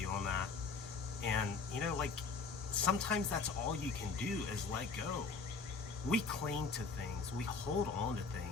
on that. And, sometimes that's all you can do is let go. We cling to things, we hold on to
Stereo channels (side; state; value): right; quieter; 4.6 dB